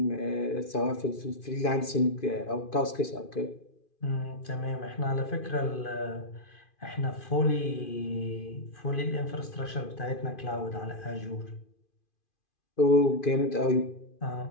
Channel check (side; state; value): right; late; 2.5 ms